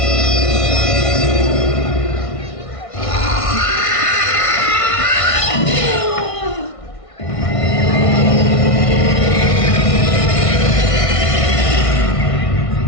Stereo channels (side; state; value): right; late; 1.6 ms